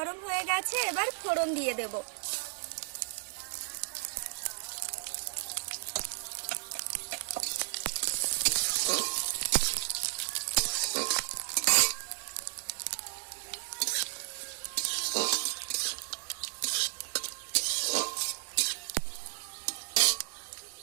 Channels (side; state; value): left; silent; 56 dB below the other